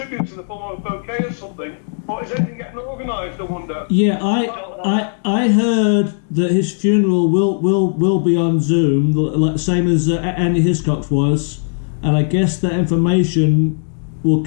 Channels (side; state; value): right; silent; digital silence